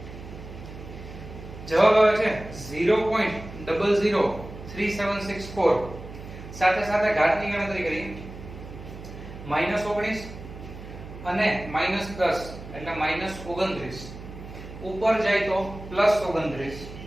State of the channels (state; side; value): noise; right; hum, 13 dB below the sound